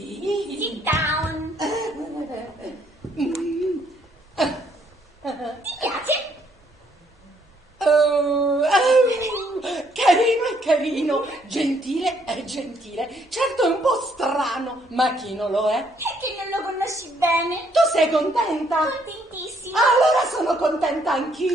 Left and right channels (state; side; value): normal; both; correlation 0.69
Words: sit down. Ti piace? Carino è carino, gentile è gentile. Certo è un po' strano, ma chi non lo è? Perché non lo conosci bene? Tu sei contenta? Contentissima. Allora sono contenta